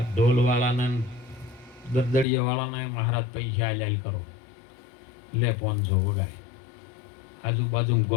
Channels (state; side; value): drops out; right; at 2.2 s